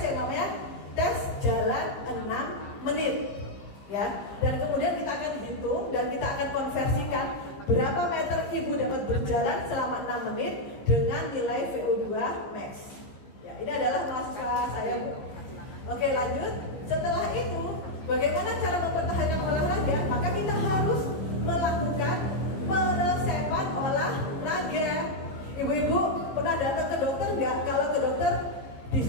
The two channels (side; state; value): right; late; 15 ms